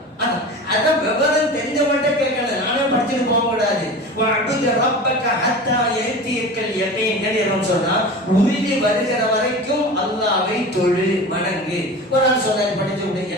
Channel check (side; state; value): both; normal; correlation 0.33